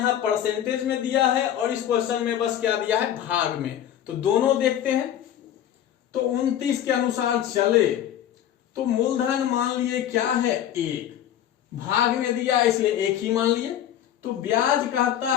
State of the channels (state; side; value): quieter; right; 10.9 dB